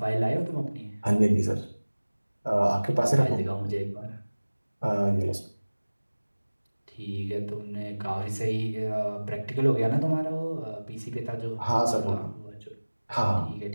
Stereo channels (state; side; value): inverted; both; correlation -1.00